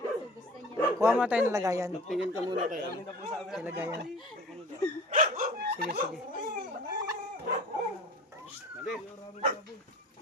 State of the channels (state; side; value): normal; both; correlation 0.41